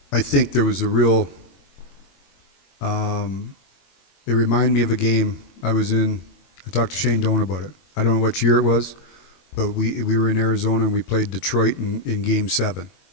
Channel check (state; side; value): late; right; 22 ms